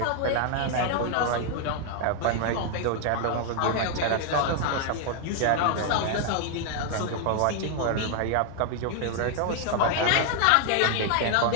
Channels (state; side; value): different; both; correlation 0.00